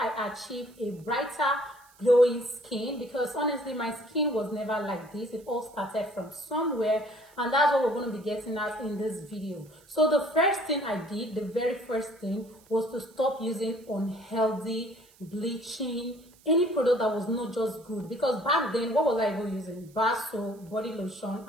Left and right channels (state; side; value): noise; right; hiss, 28 dB below the sound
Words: achieved a brighter glowing skin, because honestly my skin was never like this. It all started from somewhere, and that's what we're going to be getting at in this video. So the first thing I did, the very first thing, was to stop using unhealthy bleaching, any product that was not just good. Because back then, what was I even using? Bar soap, body lotion,